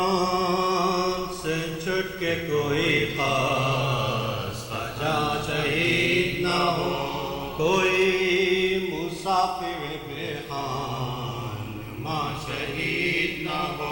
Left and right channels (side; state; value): both; identical; correlation 1.00